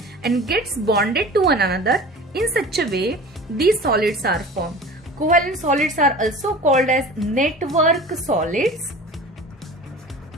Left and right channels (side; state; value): both; normal; correlation 0.39